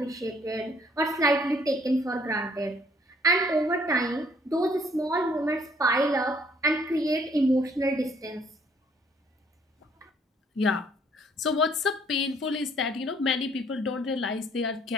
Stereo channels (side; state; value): both; normal; correlation 0.63